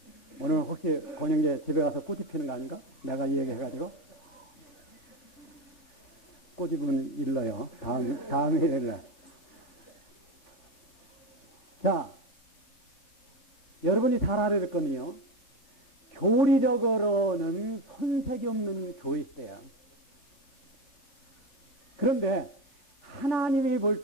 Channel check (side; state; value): right; late; 3.4 ms